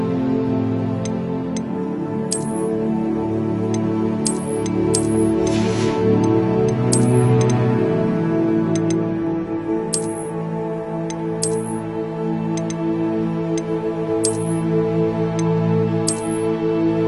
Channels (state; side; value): identical; both; correlation 1.00